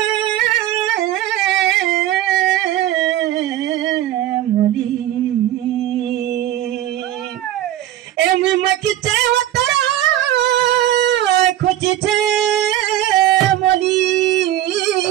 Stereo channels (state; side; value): quieter; left; 13.0 dB